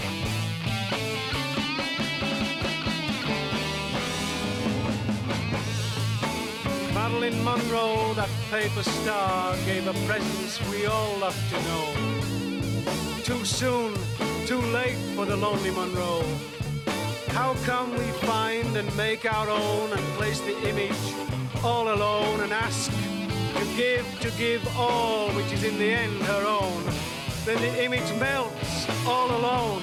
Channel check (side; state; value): both; identical; correlation 1.00